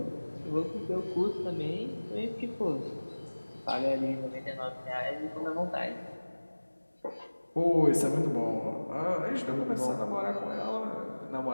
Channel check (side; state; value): both; inverted; correlation -1.00